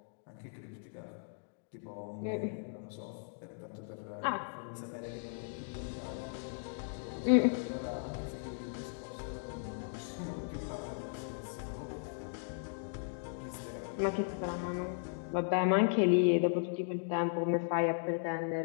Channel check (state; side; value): silent; right; digital silence